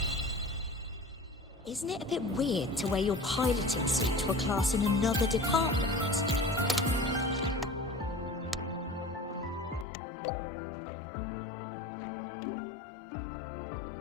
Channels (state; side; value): drops out; right; at 9.9 s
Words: Isn't it a bit weird to wear your piloting suit to a class in another department?